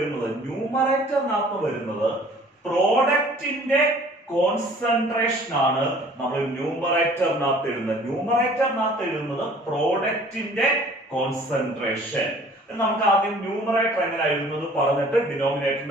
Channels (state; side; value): normal; both; correlation 0.52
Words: വരുന്നത് പ്രോഡക്റ്റിന്റെ കോൺസെൻട്രേഷൻ ആണ് നമ്മൾ ന്യൂമറേറ്ററിനകത്ത് എഴുതുന്നത് പ്രോഡക്റ്റിന്റെ കോൺസെൻട്രേഷൻ. നമുക്ക് ആദ്യം ന്യൂമറേറ്റർ എങ്ങനെ എഴുതുന്നത് പറഞ്ഞിട്ട്